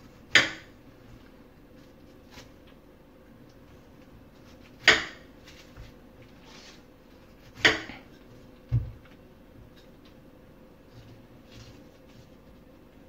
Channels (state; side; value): identical; both; correlation 1.00